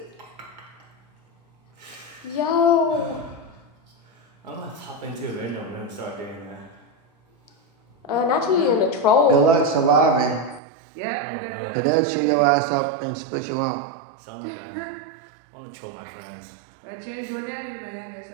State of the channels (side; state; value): left; drops out; at 10.6 s